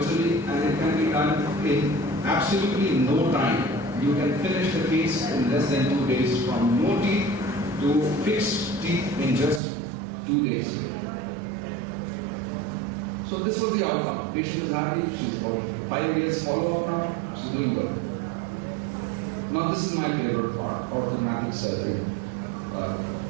and it can be done in absolutely no time. You can finish the case in less than 2 days, from no teeth to fixed teeth in just 2 days. So this was the outcome. Patient is happy. She's about 5 years follow-up now. She's doing good. Now this is my favorite part, orthodontic surgery.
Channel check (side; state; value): left; drops out; at 9.6 s